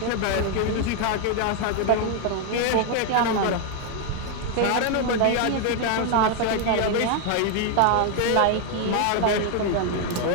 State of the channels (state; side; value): different; both; correlation 0.01